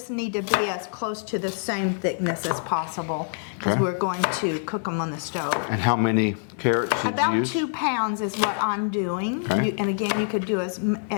need to be as close to the same thickness as possible because we're going to cook them on the stove. And how many carrots did you About use? 2 pounds is what I'm doing. Okay. And again, you could do as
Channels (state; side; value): silent; right; digital silence